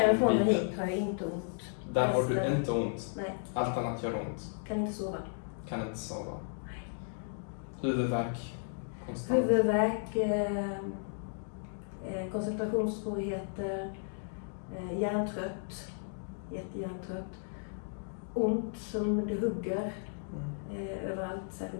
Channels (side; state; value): right; silent; digital silence